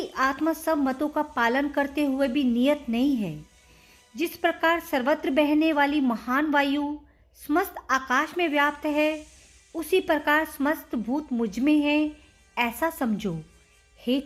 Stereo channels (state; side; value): identical; both; correlation 1.00